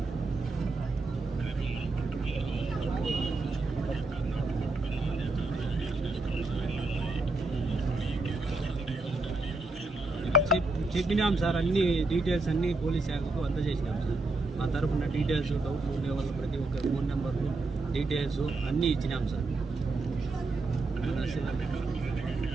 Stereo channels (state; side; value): quieter; left; 3.2 dB